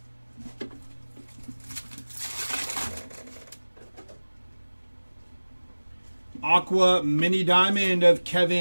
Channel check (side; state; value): both; inverted; correlation -1.00